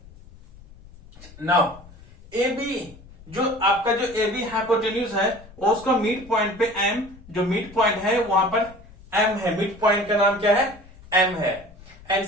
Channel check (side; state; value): left; noise; rumble, 21 dB below the sound